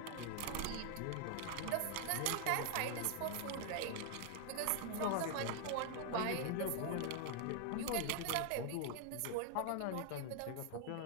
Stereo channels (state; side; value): different; both; correlation 0.00